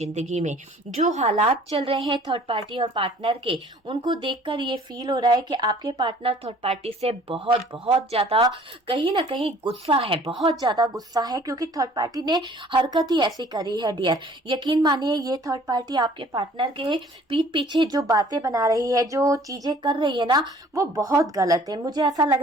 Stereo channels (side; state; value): both; normal; correlation 0.53